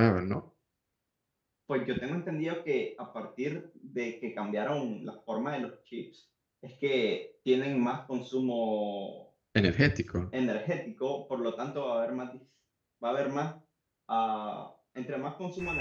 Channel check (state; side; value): identical; both; correlation 1.00